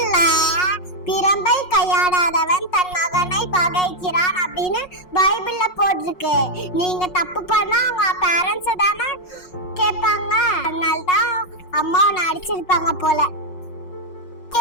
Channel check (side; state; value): right; late; 5.5 ms